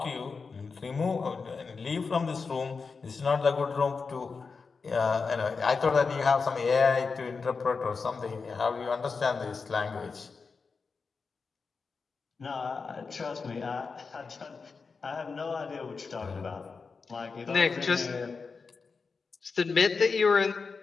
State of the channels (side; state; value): right; quieter; 4.8 dB